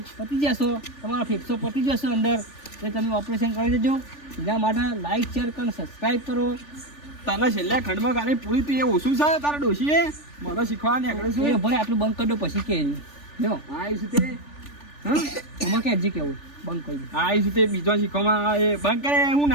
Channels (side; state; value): right; late; 3.4 ms